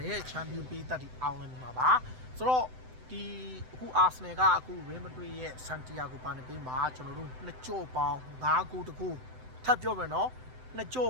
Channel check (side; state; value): left; late; 7.9 ms